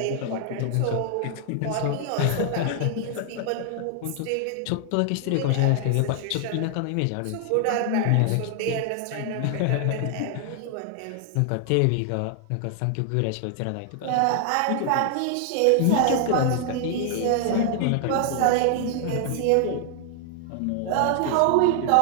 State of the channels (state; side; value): different; both; correlation 0.00